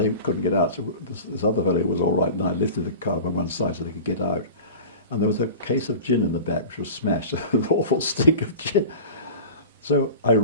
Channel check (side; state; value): both; inverted; correlation -0.35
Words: couldn't get out. So this other fellow was all right, and I lifted the car on one side so they could get out. And there was a case of gin in the back, which was smashed, an awful stink of gin. So I